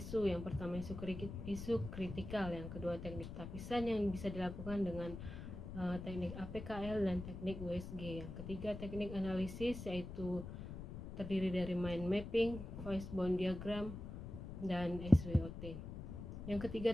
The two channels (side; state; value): left; noise; rumble, 9 dB below the sound